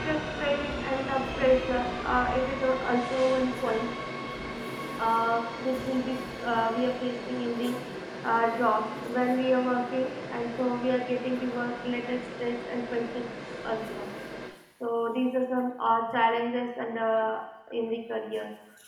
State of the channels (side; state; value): both; identical; correlation 1.00